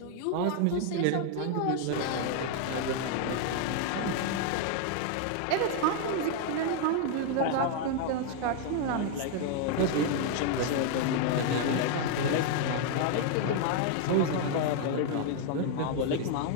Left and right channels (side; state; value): both; different; correlation 0.00